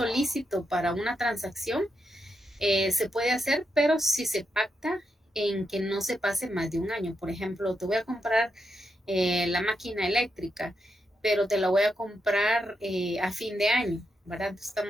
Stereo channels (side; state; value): both; normal; correlation 0.84